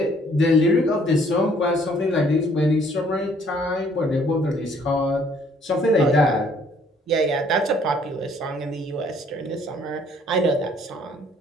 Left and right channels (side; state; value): both; normal; correlation 0.62